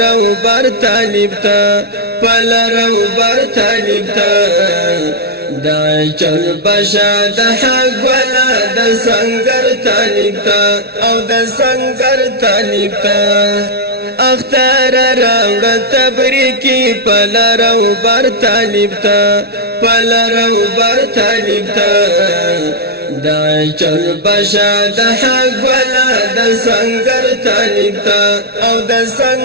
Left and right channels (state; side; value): late; left; 0.47 ms